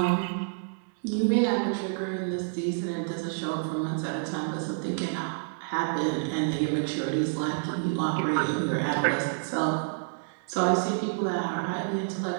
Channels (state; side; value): silent; left; digital silence